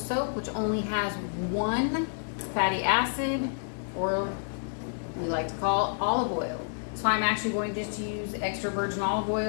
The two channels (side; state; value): right; silent; digital silence